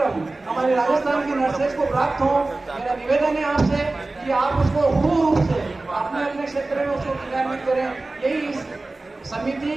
हमारे राजस्थान की नर्सेज को प्राप्त हो, मेरा निवेदन है आपसे कि आप उसको पूर्ण रूप से अपने अपने क्षेत्र में उसको क्रियान्वित करें। यही इस समिति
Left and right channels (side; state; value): left; quieter; 3.1 dB